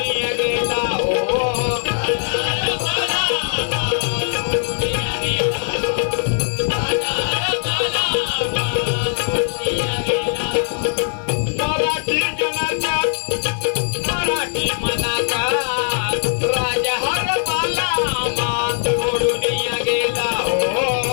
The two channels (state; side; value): silent; right; digital silence